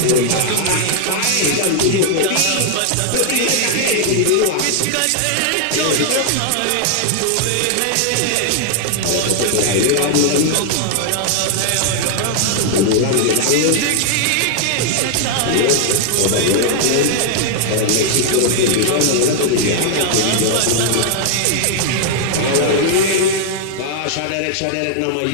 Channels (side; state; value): both; different; correlation 0.00